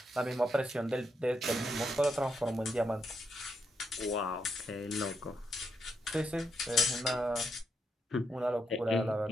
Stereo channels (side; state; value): both; normal; correlation 0.80